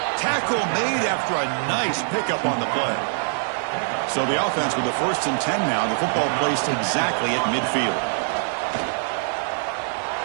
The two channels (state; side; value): silent; left; 63 dB below the other